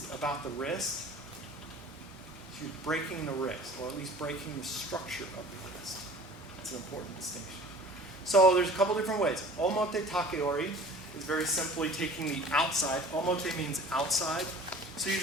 about the wrist. You're breaking the wrist, or at least breaking the structure of the wrist. That's an important distinction. So there's a couple different ways. Omote takeori is very simply taking the outside. Omote means outside. So you're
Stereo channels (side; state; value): both; normal; correlation 0.45